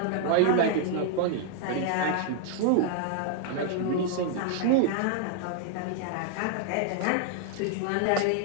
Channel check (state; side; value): different; both; correlation -0.01